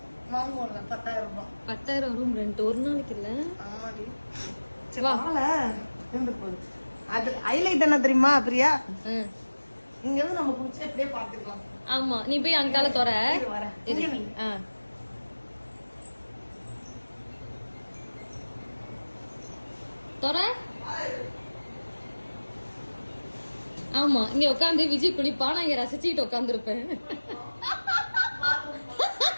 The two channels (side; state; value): both; inverted; correlation -1.00